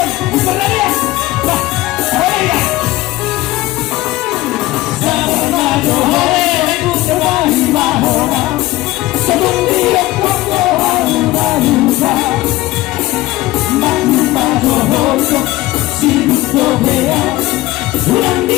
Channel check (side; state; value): right; quieter; 17.9 dB